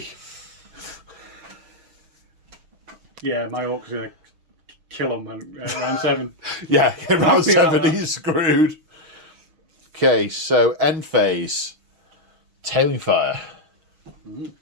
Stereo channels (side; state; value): left; late; 6.4 ms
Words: Yeah, my orc's going to kill him round 7. Yeah, in round Happy about 7 that. he's screwed. Okay, so end phase. Tailing fire.